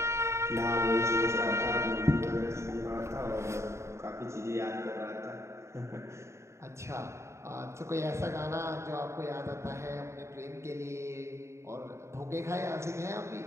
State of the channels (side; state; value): left; late; 0.14 ms